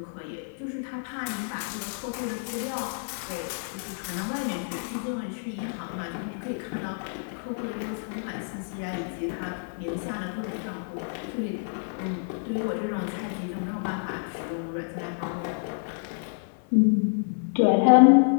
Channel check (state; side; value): silent; right; 59 dB below the other